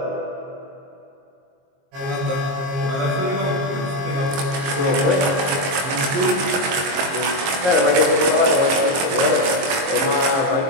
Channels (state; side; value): late; left; 22 ms